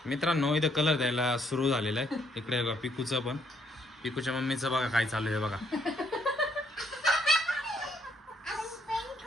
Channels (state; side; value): normal; both; correlation 0.70